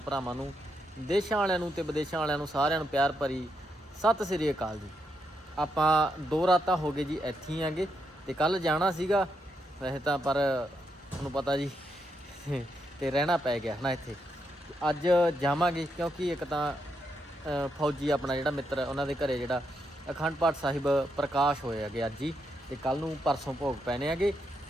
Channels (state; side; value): normal; both; correlation 0.81